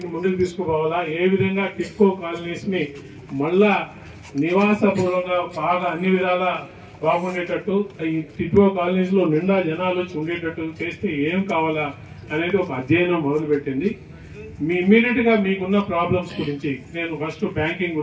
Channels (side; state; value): both; identical; correlation 1.00